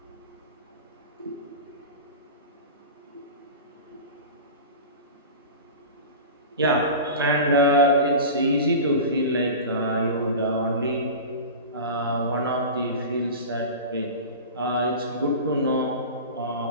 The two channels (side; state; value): both; inverted; correlation -0.31